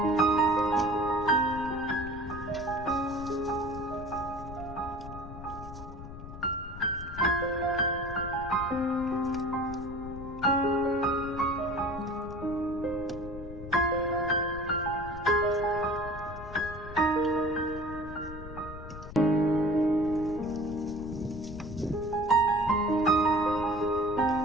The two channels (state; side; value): noise; left; rumble, 12 dB below the sound